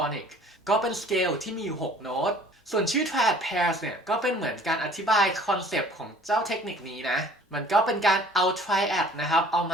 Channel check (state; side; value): normal; both; correlation 0.51